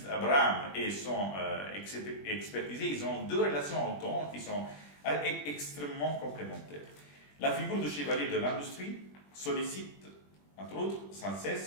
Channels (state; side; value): late; right; 21 ms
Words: Abraham et son expertisé, ils ont deux relations au temps qui sont extrêmement complémentaires. La figure du chevalier de l'industrie sollicite, entre autres, sans